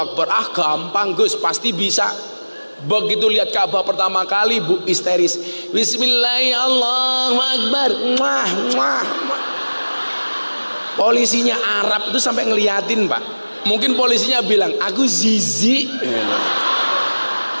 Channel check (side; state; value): both; inverted; correlation -1.00